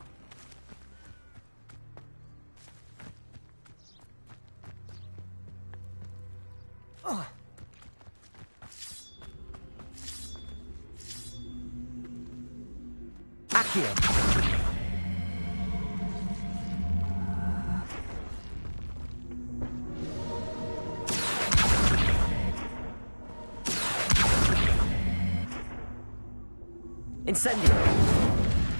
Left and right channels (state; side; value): inverted; both; correlation -1.00